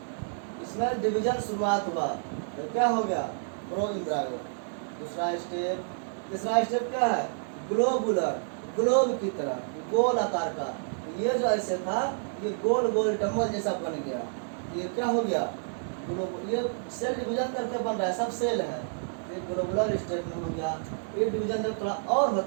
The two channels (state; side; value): silent; left; digital silence